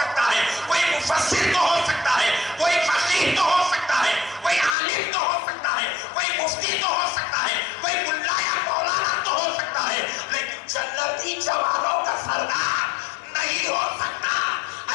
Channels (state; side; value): drops out; right; at 4.8 s